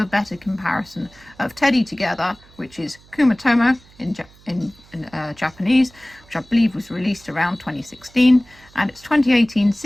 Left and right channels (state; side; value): noise; right; hum, 26 dB below the sound